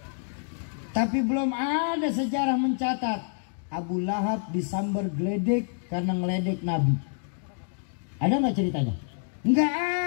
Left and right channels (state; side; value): silent; right; digital silence